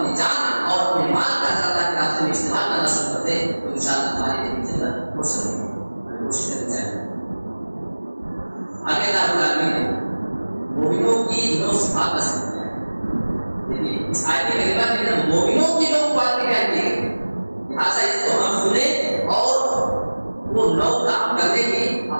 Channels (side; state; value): both; inverted; correlation -1.00